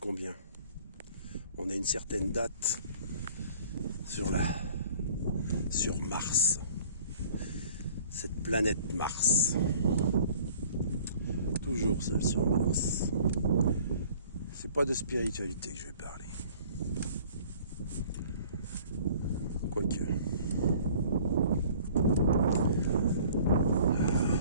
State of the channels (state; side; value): inverted; both; correlation -0.51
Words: On a une certaine date sur Mars. Cette planète Mars. Toujours seul sur Mars. C'est pas de spiritualité que je vais parler. Quoique.